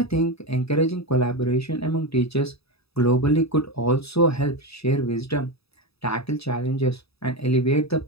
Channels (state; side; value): late; right; 0.77 ms